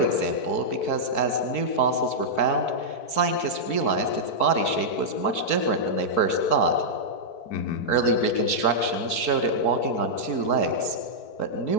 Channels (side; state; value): right; late; 4.6 ms